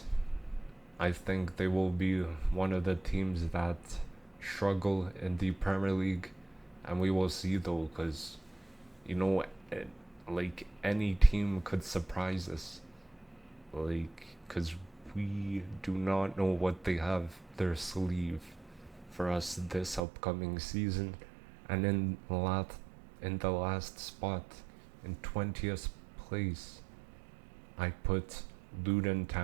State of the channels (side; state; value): left; drops out; at 20.0 s